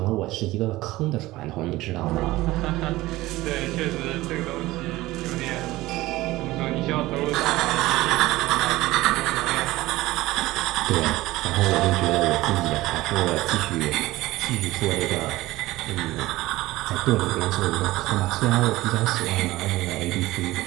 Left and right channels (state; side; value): quieter; left; 18.1 dB